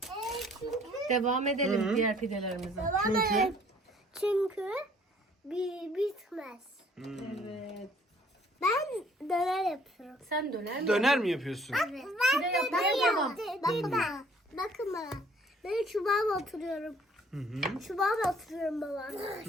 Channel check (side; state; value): both; normal; correlation 0.58